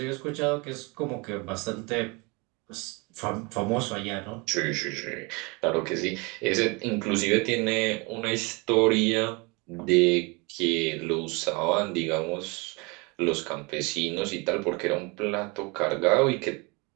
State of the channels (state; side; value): quieter; left; 28.3 dB